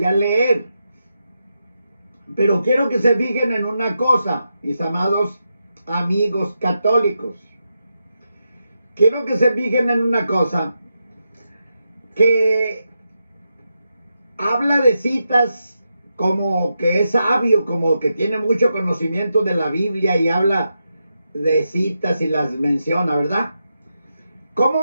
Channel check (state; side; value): inverted; both; correlation -0.86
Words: a leer. Pero quiero que se fijen en una cosa, mis amados amigos católicos. Quiero que se fijen en una cosa, que habla de citas como que es sabio, como que tiene mucho conocimiento de la Biblia y habla de citas y las menciona, ¿verdad?